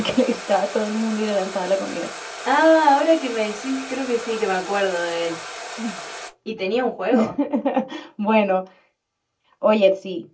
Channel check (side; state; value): both; identical; correlation 1.00